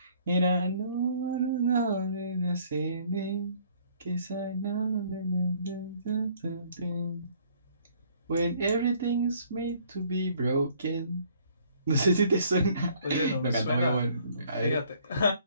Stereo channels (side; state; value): both; inverted; correlation -0.61